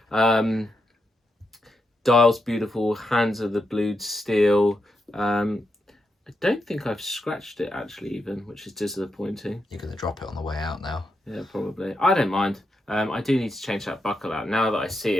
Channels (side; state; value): both; normal; correlation 0.84